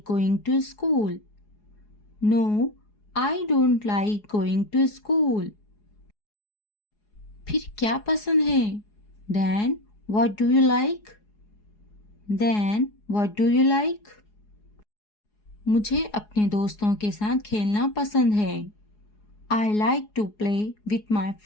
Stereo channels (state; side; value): late; right; 4.8 ms